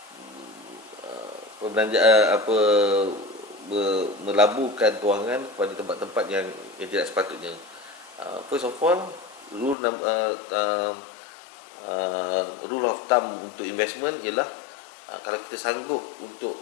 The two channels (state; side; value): drops out; right; at 9.8 s